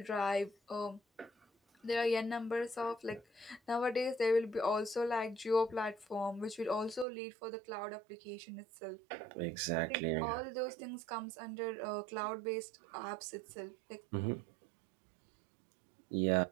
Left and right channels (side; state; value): left; drops out; at 7.1 s